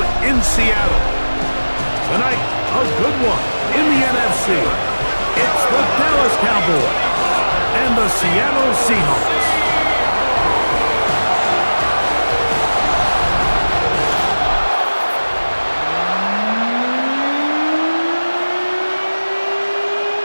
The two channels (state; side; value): inverted; both; correlation -1.00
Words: in Seattle. Tonight, a good one in the NFC. It's the Dallas Cowboys and the Seattle Seahawks.